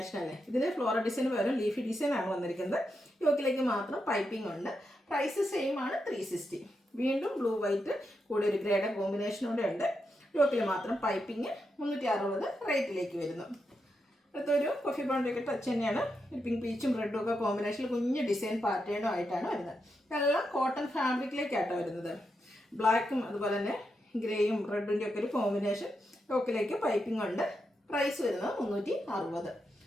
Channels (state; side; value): normal; both; correlation 0.85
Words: അല്ലേ. ഇതിൽ ഫ്ലോറൽ ഡിസൈൻ വരും. ലീഫി ഡിസൈനാണ് വന്നിരിക്കുന്നത്. യോക്കിലേക്ക് മാത്രം പൈപ്പിംഗ് ഉണ്ട്. പ്രൈസ് സെയിം ആണ്. 360. വീണ്ടും ബ്ലൂ വൈറ്റ് കൂടെ ഒരു ഗ്രേഡ് കോമ്പിനേഷനോടെ ഉണ്ട്. യോക്കിൽ മാത്രം പൈപ്പിംഗ്. 360 റേറ്റിലേക്ക് വരുന്നു. അടുത്തൊരു കോഫി ബ്രൗണിലേക്ക് ടച്ച് തന്നെയാണ്. ഒരു പിങ്ക് പീച്ചും റെഡും ഒക്കെ കോമ്പിനേഷനിൽ കുഞ്ഞ് ഡിസൈൻ പാറ്റേണും ആയിട്ടാണ് വരുന്നത്. ഇതെല്ലാം കോട്ടൺ ഫാബ്രിക്കിലേക്കാട്ടോ വരുന്നത്. ബ്ലാക്കും അതുപോലെ തന്നെ ഗ്രേയും റെഡിൻ്റെ ഒക്കെ ഒരു കോമ്പിനേഷൻ. യോക്കിലേക്ക് പൈപ്പിംഗ് ഉണ്ട്. പ്രൈസ് വരുന്നത് 360.